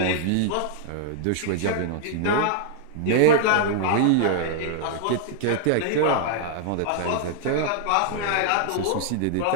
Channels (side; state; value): both; different; correlation -0.01